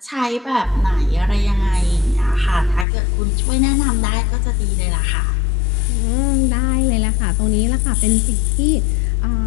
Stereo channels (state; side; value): drops out; right; at 2.9 s